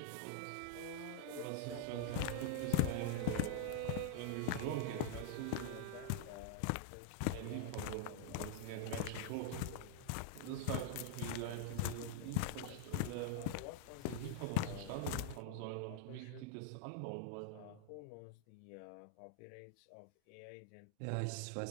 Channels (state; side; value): different; both; correlation -0.01